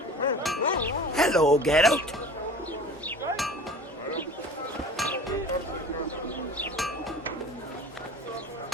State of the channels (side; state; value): both; normal; correlation 0.41